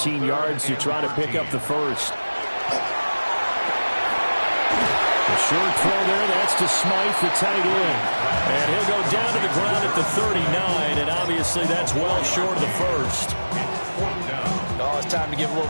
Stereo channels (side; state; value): both; inverted; correlation -1.00